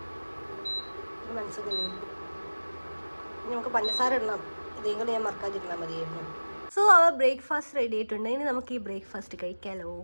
നമുക്ക് പഞ്ചസാര ഇടണം, ഇതേം കൂടെ ഞാൻ മറക്കാതിരുന്നാൽ മതിയായിരുന്നു. സോ അവർ ബ്രേക്ക്ഫാസ്റ്റ് റെഡി ആയിട്ടുണ്ട്. ഇനി നമുക്ക് ഈ ബ്രേക്ക്ഫാസ്റ്റ് കഴിക്കാമല്ലോ.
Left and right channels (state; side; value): inverted; both; correlation -1.00